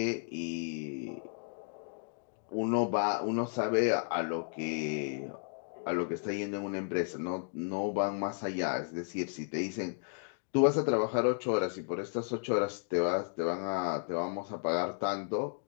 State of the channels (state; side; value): silent; right; digital silence